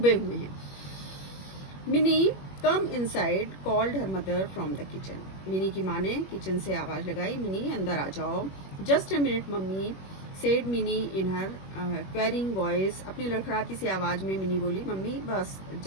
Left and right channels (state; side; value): late; right; 21 ms